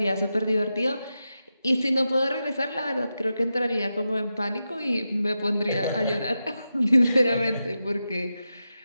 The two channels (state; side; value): inverted; both; correlation -0.90